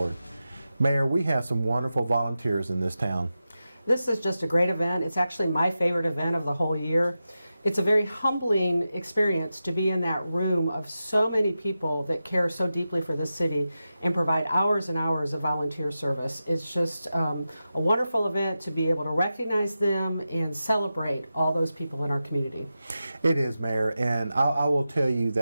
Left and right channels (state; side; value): inverted; both; correlation -0.92